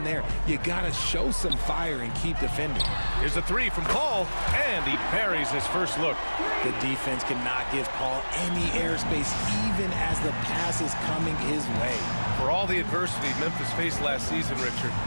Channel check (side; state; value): both; inverted; correlation -1.00